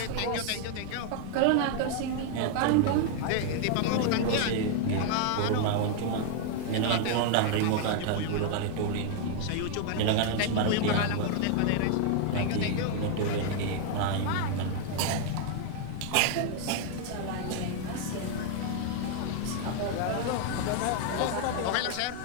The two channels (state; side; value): different; both; correlation 0.00